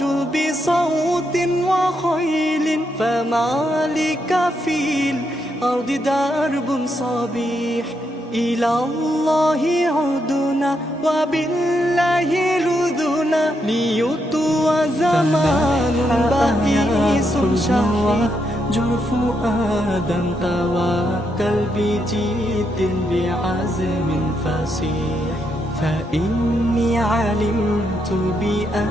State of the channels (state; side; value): normal; both; correlation 0.80